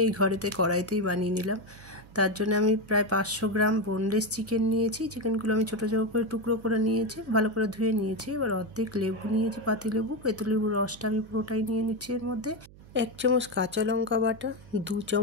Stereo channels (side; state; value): right; noise; hum, 22 dB below the sound